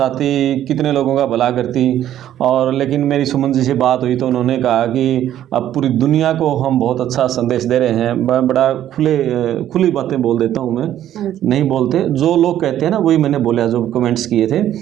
कितने लोगों का भला करती। और लेकिन मेरी सुमन जी से बात हुई तो उन्होंने कहा कि अब पूरी दुनिया को हम बहुत अच्छा संदेश दे रहे हैं। बड़ा खुली बातें बोल देता हूँ मैं, नहीं बोलते जो लोग कहते हैं ना वही मैंने बोला, जो कमेंट्स किए थे,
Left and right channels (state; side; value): quieter; left; 11.7 dB